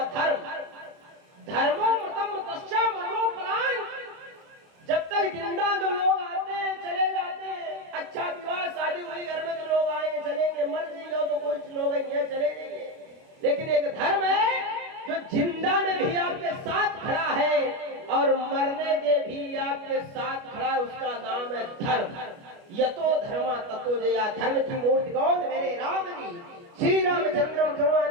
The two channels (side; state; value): left; late; 29 ms